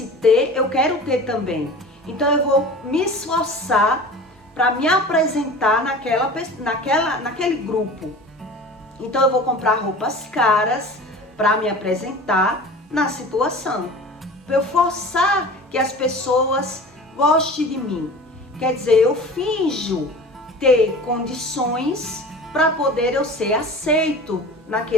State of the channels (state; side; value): normal; both; correlation 0.38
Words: ter, eu quero ter também. Então eu vou me esforçar para me apresentar naquele grupo. Então eu vou comprar roupas caras para me apresentar na situação. Para eu forçar que as pessoas gostem de mim. Quer dizer, eu finjo ter condições para poder eu ser aceito